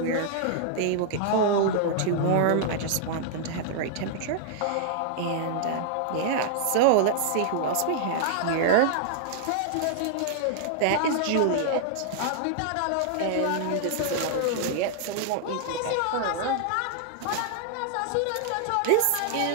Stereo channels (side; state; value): both; different; correlation -0.01